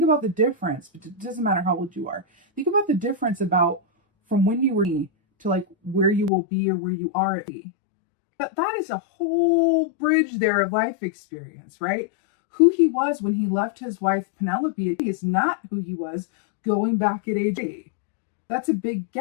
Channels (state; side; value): drops out; right; at 6.3 s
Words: about the difference. It doesn't matter how old you are. Think about the difference about from when you were to like where you will be or where you are at be. That is a whole bridge there of life experience, right? Who he was when he left his wife Penelope is not who he was going back at age 8. That's a big